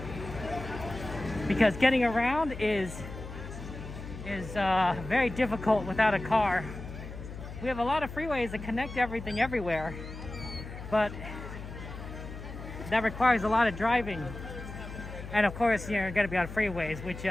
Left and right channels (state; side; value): noise; left; hum, 11 dB below the sound